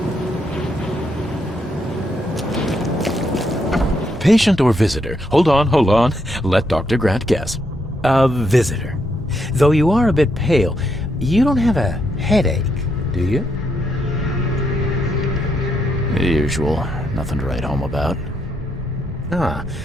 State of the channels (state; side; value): normal; both; correlation 0.78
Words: Patient or visitor? Hold on. Let Dr. Grant guess. A visitor. Though you are a bit pale, you don't have a headache, do you? The usual. Nothing to write home about. Ah,